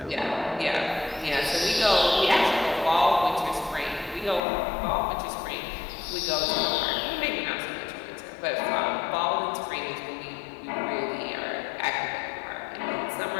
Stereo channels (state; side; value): drops out; right; at 4.4 s